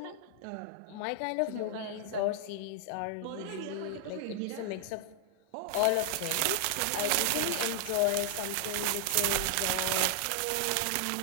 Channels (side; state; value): both; different; correlation 0.00